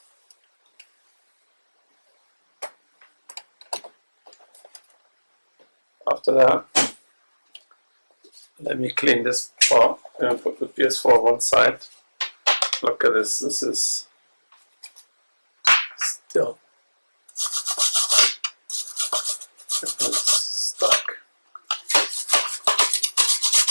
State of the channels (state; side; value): inverted; both; correlation -1.00